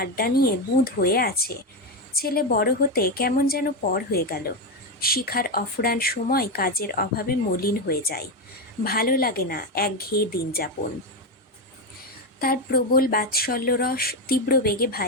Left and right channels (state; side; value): normal; both; correlation 0.10